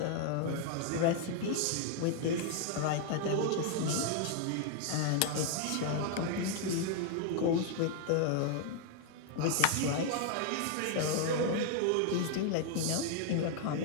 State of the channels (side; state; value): both; different; correlation 0.00